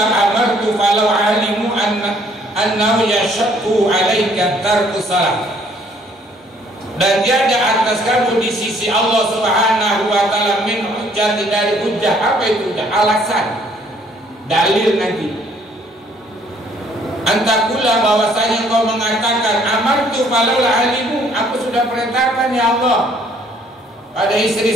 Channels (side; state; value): both; normal; correlation 0.62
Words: amartu falau alimu annahu yashaqqu alayka tarku salat. Dan tiada atas kamu di sisi Allah Subhanahu wa ta'ala min hujjah, dari hujjah. Apa itu hujjah? Alasan, dalil nanti. Antakula, bahwasanya kau mengatakan amartu falau alimu, aku sudah perintahkan ya Allah pada